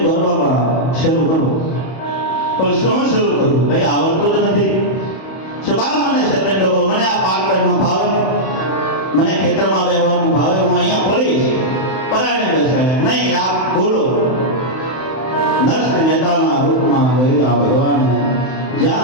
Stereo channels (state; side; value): late; right; 31 ms